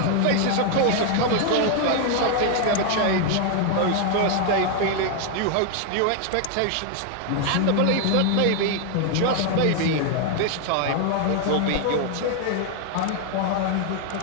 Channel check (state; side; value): different; both; correlation 0.00